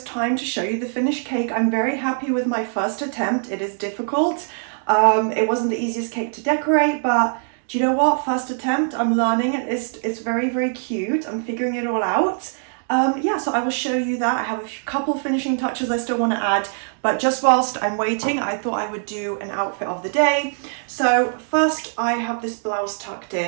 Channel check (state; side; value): silent; left; digital silence